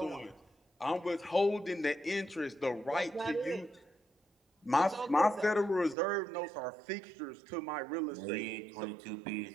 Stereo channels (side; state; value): left; drops out; at 6.0 s